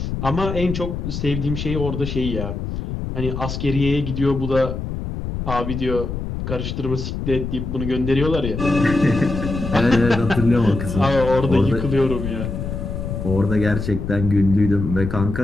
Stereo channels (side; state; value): left; noise; rumble, 5 dB below the sound